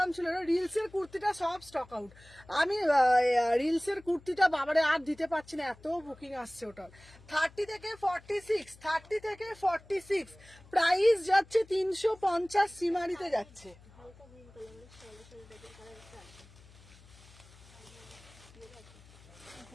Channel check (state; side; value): noise; left; hum, 24 dB below the sound